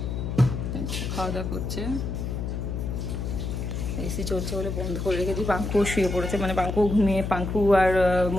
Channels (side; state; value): left; noise; hum, 3 dB below the sound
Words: খাওয়া দাওয়া করছে। এসি চলছে বলে বন্ধ করে রেখেছি। পাঙ্কু শুয়ে পড়েছে, মানে পাঙ্কু ঘুমিয়ে, পাঙ্কু আর